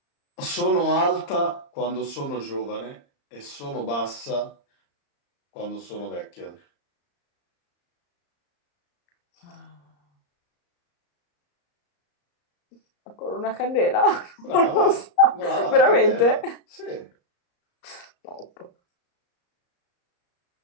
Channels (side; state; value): right; late; 34 ms